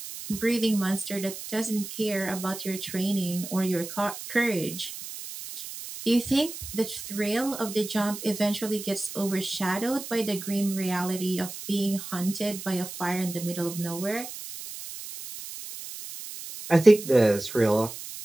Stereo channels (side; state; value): right; noise; hiss, 10 dB below the sound